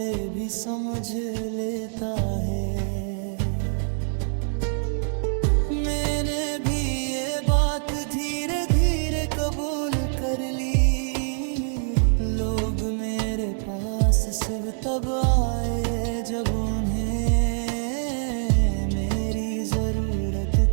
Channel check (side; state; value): left; silent; digital silence